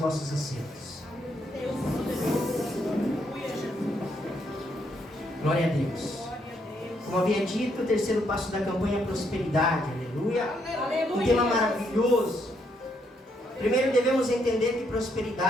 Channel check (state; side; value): normal; both; correlation 0.74